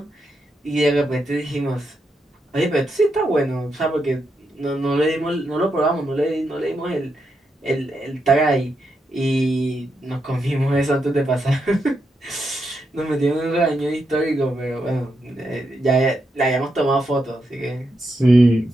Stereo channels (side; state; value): both; normal; correlation 0.83